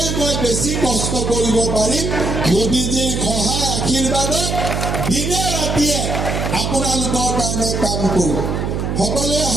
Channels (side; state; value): right; noise; hum, 2 dB below the sound